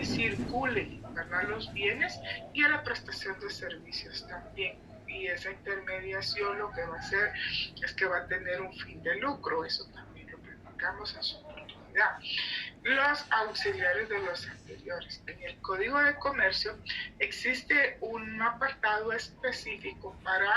circule, ¿verdad?, los bienes y a la prestación de servicios también. Y esa intermediación lo que va a hacer es que va a tener un fin de lucro, eso también lo platicamos en su oportunidad. Los auxiliares de los anteriores. En el Código de Comercio existe un apartado específico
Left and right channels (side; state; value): both; identical; correlation 1.00